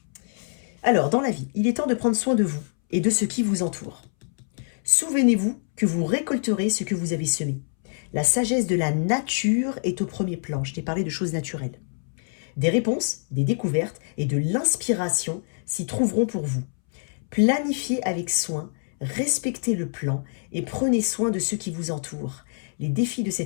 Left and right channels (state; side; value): silent; right; 62 dB below the other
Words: Alors, dans la vie, il est temps de prendre soin de vous et de ce qui vous entoure. Souvenez-vous que vous récolterez ce que vous avez semé. La sagesse de la nature est au premier plan. Je t'ai parlé de choses naturelles. Des réponses, des découvertes et de l'inspiration s'y trouveront pour vous. Planifiez avec soin, respectez le plan et prenez soin de ceux qui vous entourent. Les défis de